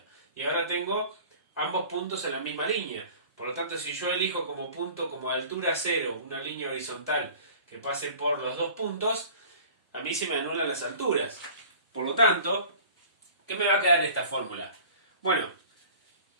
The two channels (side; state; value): both; inverted; correlation -0.45